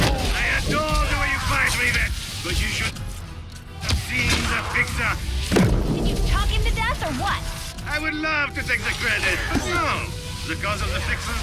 But you should have seen the fixer. Did you talk him to death or what? I would love to take the credit, but no. The cause of the fixer's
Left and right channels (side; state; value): both; identical; correlation 1.00